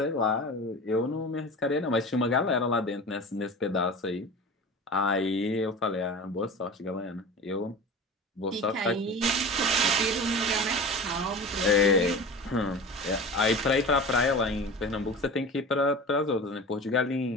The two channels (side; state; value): both; normal; correlation 0.34